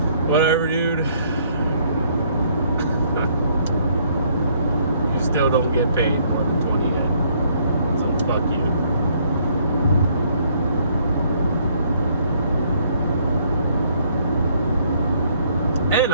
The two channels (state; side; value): inverted; both; correlation -0.66